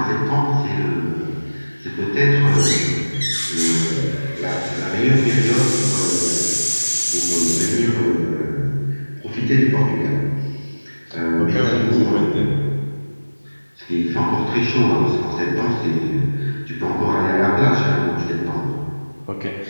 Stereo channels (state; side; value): inverted; both; correlation -1.00